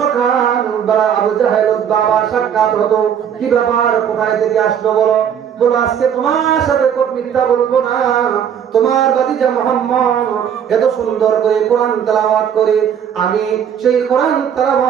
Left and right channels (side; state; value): left; quieter; 8.5 dB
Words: আবু জাহেল বাবা সাক্ষাৎ হতো। কি ব্যাপার, কোথায় থেকে আসলো বলো? বলো আজকে তোমার সাথে মিথ্যা বলবো না, তোমার ভাতিজা মুহাম্মদ এত সুন্দর করে কোরআন তেলাওয়াত করে, আমি সেই কোরআন